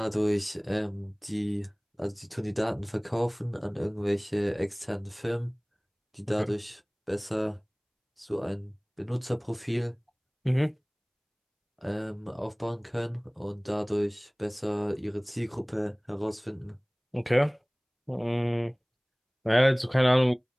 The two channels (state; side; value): identical; both; correlation 1.00